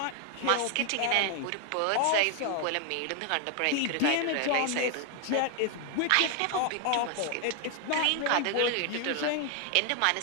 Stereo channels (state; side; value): different; both; correlation 0.00